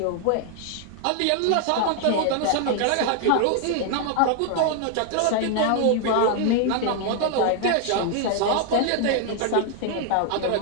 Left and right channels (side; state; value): both; different; correlation 0.00